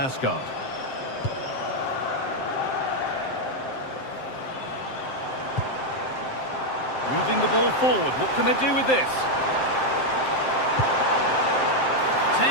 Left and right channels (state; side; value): late; right; 7.6 ms